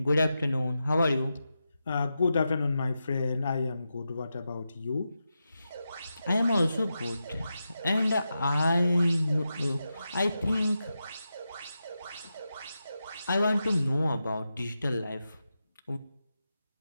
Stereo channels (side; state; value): both; inverted; correlation -0.89